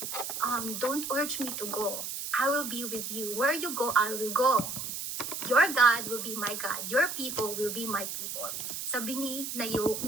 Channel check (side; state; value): right; noise; hiss, 5 dB below the sound